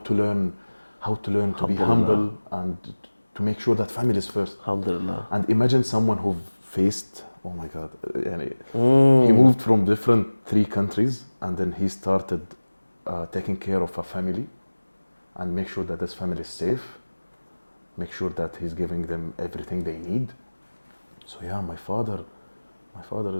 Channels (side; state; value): both; inverted; correlation -1.00